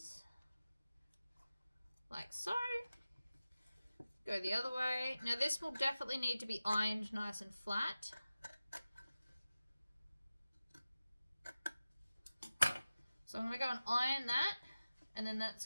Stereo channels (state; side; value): inverted; both; correlation -0.95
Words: like so. Go the other way. Now this will definitely need to be ironed nice and flat. So I'm going to go and iron that, and then that's